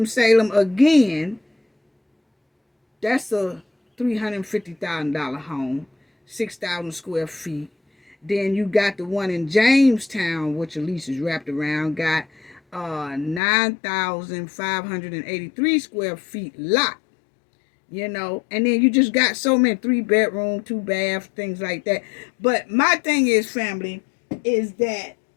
again, that's a $350,000 home, 6,000 square feet. Then you got the one in Jamestown, which Elise is wrapped around, got 9,583 square feet lot. And then you just got so many 3-bedroom, 2-bath, things like that. But my thing is, family, is that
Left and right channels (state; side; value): drops out; right; at 13.4 s